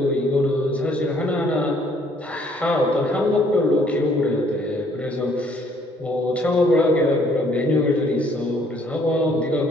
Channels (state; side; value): normal; both; correlation 0.63